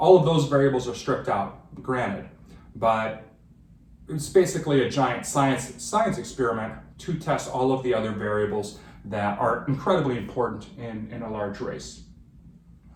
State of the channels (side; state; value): both; identical; correlation 1.00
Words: of those variables are stripped out, granted, but it's basically a giant science experiment to test all of the other variables that are incredibly important in a large race.